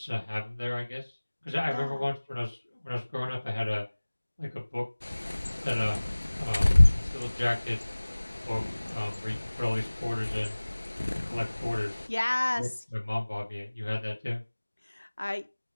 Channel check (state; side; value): inverted; both; correlation -1.00